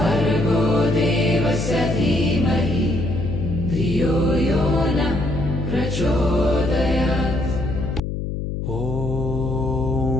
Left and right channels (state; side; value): noise; left; hum, 4 dB below the sound